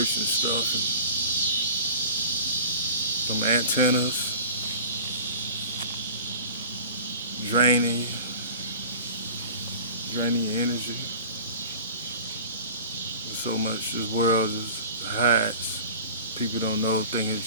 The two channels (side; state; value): both; inverted; correlation -0.41